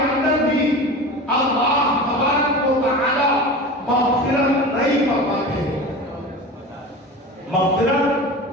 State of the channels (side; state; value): both; normal; correlation 0.32